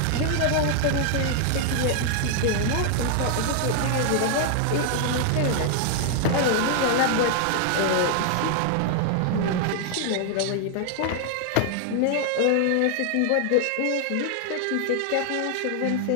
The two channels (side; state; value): both; different; correlation 0.00